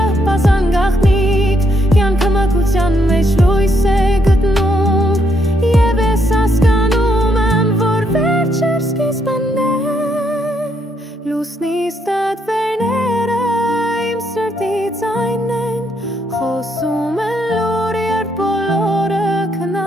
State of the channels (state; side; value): normal; both; correlation 0.75